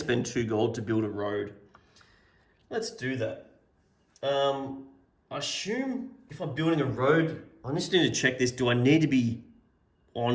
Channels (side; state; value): both; identical; correlation 1.00